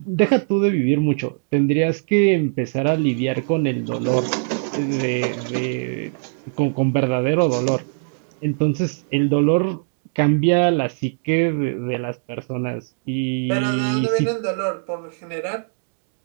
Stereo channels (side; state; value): left; silent; digital silence